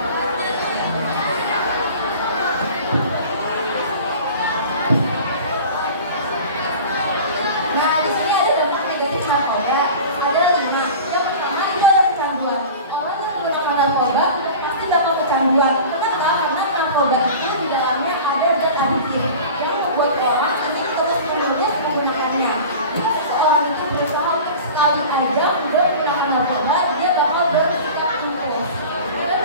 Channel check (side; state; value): both; inverted; correlation -0.37